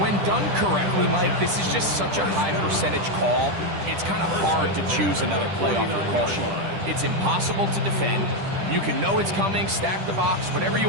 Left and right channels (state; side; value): late; left; 10 ms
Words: done correctly, Mike, this is just such a high percentage call. It's kind of hard to choose another play off your call sheet. It's impossible to defend. You can know it's coming, stack the box, whatever you